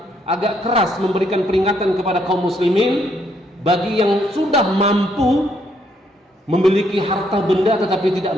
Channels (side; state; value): both; normal; correlation 0.72